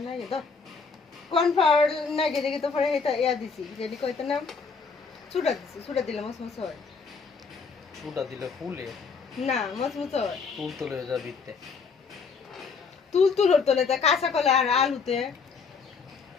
নাই তো কর্নফ্লাওয়ার নাই দেখি তো পরে এটা ইয়া দিছি যেটি কইতে নাম চুড়া দিছি চুড়া দিলে মসমস হয় চুটা দিলে ফুলে না মসমস হয় তুল তুলে যা দিতে তুল তুলোর তলে তা কাঁচা কলা আর আলুতে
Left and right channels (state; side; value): quieter; right; 5.1 dB